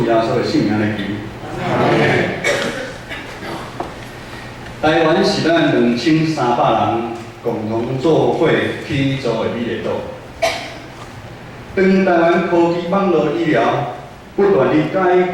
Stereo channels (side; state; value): both; identical; correlation 1.00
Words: 耶稣的圣名来求。台湾是咱2300人共同做伙起造的美丽岛。当台湾科技网络医疗不断地改